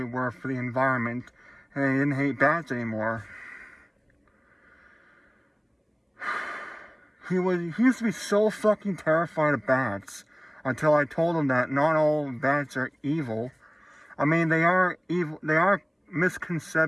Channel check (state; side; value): identical; both; correlation 1.00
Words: were for the environment. And he didn't hate bats anymore. He used to be so fucking terrified of bats until I told him that not all bats are evil. I mean, they are evil. There are